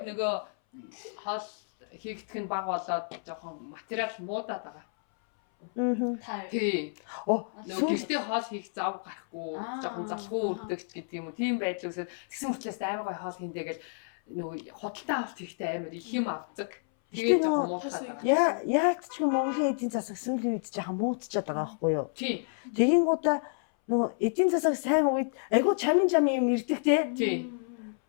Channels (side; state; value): right; silent; 58 dB below the other